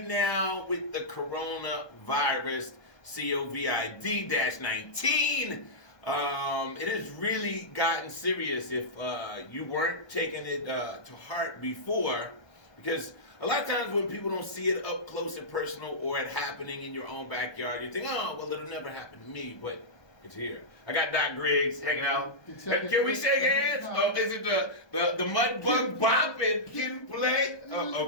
now with the coronavirus, COVID-19. It has really gotten serious if you weren't taking it to heart before, because a lot of times when people don't see it up close and personal or it happening in your own backyard, you think, oh, well, it'll never happen to me, but it's here. I got Doc Griggs hanging out. Can we shake hands? Oh, is it the mud bug bop and kid play? Oh,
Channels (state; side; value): late; right; 1.2 ms